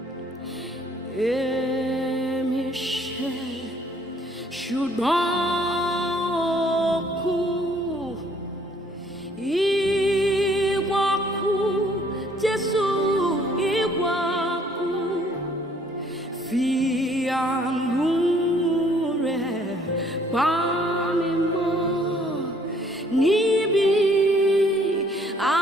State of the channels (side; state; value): both; normal; correlation 0.62